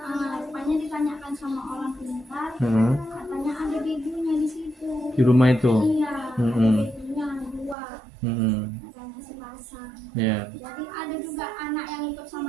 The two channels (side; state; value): left; drops out; at 7.8 s